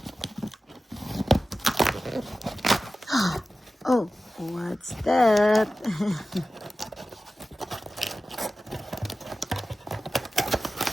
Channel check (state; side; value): normal; both; correlation 0.94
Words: Oh, what's that?